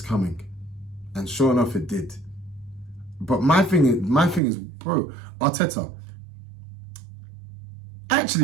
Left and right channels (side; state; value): left; drops out; at 4.4 s